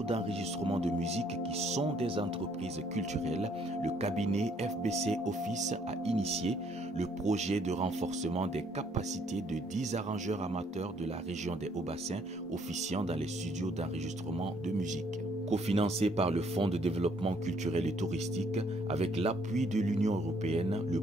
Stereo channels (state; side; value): normal; both; correlation 0.65